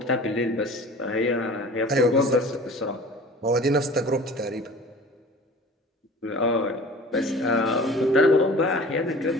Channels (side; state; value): both; normal; correlation 0.42